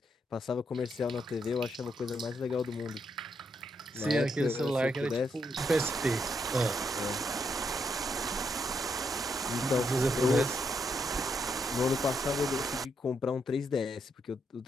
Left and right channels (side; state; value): both; normal; correlation 0.78